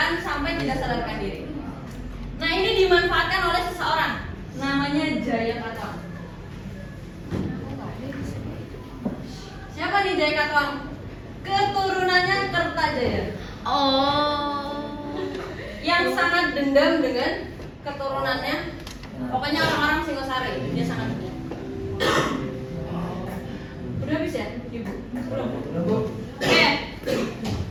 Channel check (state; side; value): identical; both; correlation 1.00